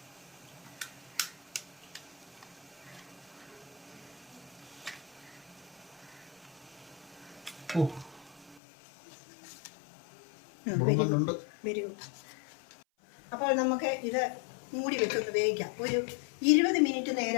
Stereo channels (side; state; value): right; drops out; at 8.6 s